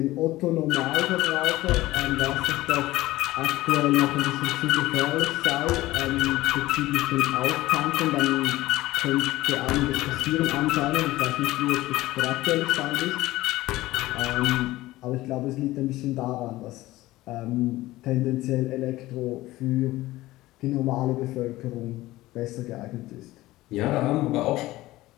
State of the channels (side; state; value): right; quieter; 17.5 dB